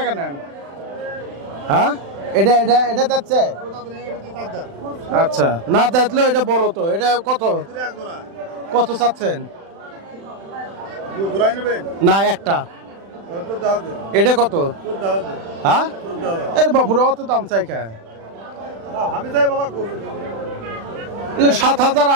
নেন। হ্যাঁ, এটা এটা এটা যাচ্ছে। আচ্ছা, না দেখলেও এটা বড় তো। এটা কত কত চাচ্ছেন? না, একটা। এটা কত? হ্যাঁ, এর বাপুরা অত দাম চাই কে? 7,000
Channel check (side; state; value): left; late; 36 ms